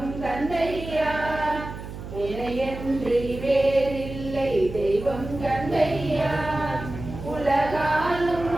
தந்தையா. இணையன்றி வேறில்லை தெய்வம் தந்தையா. உலகாலும்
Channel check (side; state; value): right; noise; hum, 11 dB below the sound